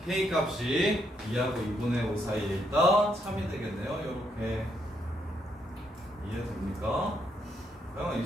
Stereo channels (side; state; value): both; normal; correlation 0.76